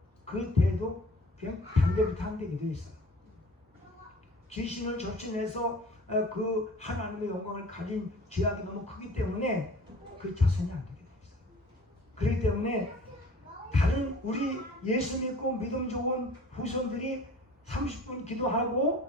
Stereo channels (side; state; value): both; normal; correlation 0.47